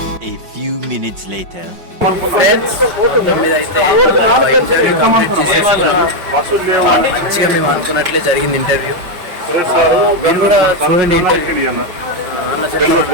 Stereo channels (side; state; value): left; late; 5.5 ms